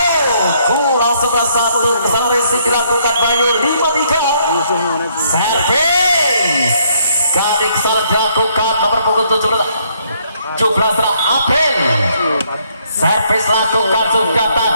kurang 11-1 kesalahan risik dilakukan Bayu 5-3 servis kali kesalahan dilakukan nomor punggung 17 April servis lakukan sudah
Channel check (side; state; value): both; inverted; correlation -0.69